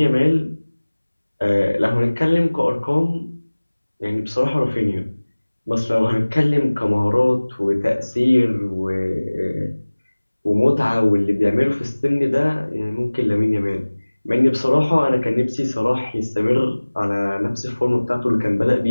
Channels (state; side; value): inverted; both; correlation -1.00